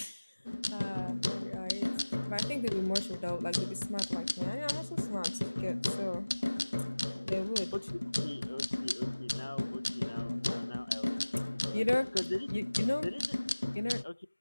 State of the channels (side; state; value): both; inverted; correlation -1.00